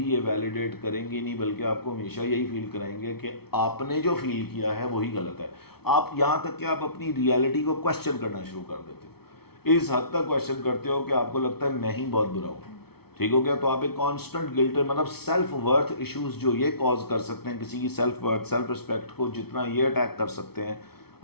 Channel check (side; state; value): right; late; 0.96 ms